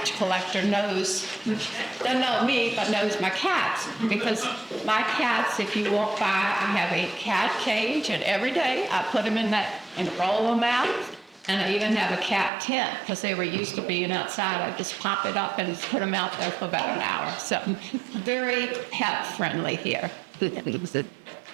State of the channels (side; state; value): left; drops out; at 12.5 s